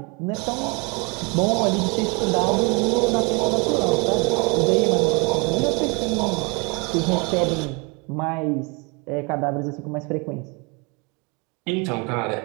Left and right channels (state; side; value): quieter; left; 30.4 dB